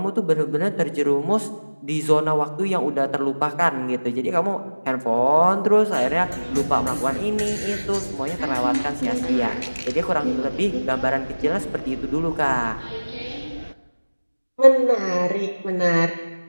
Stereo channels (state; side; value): inverted; both; correlation -1.00